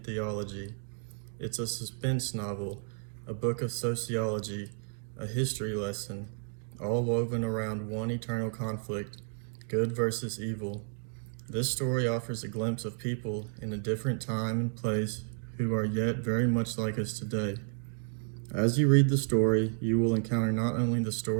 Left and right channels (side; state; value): left; silent; 57 dB below the other